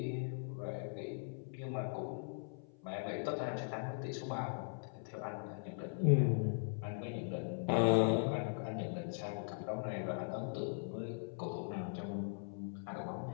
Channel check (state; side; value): silent; right; 51 dB below the other